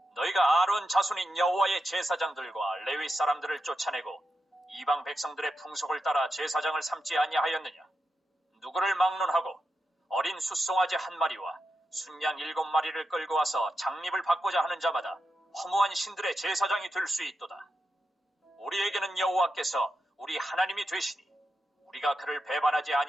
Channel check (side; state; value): both; normal; correlation 0.87